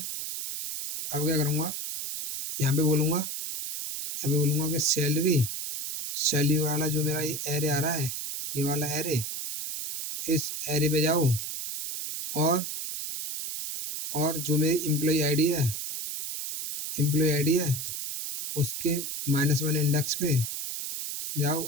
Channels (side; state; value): right; noise; hiss, 5 dB below the sound